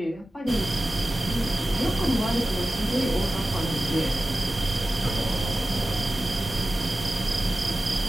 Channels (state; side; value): normal; both; correlation 0.94